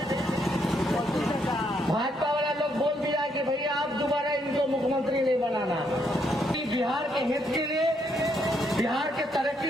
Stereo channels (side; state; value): both; normal; correlation 0.74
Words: भाजपा वाला लोग बोल दिया कि भैया आप दोबारा इनको मुख्यमंत्री नहीं बनाना। बिहार के हित के लिए, बिहार के